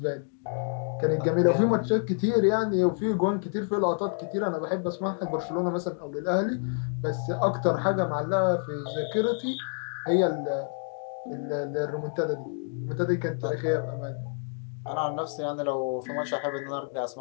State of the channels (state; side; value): silent; right; 57 dB below the other